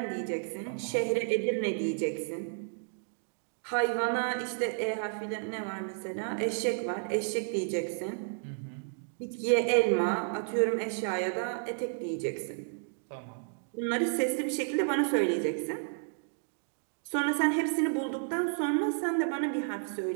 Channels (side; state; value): left; silent; digital silence